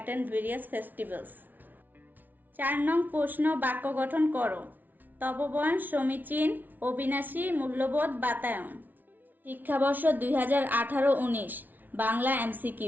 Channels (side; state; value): left; late; 0.083 ms